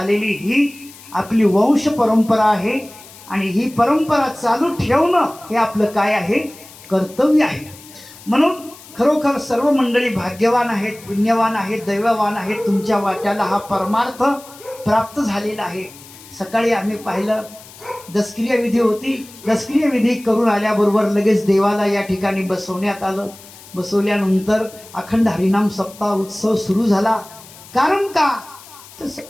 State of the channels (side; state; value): left; noise; hiss, 20 dB below the sound